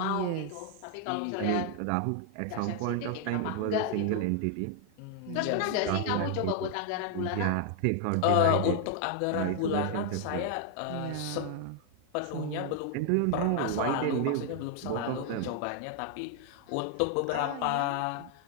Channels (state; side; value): different; both; correlation 0.00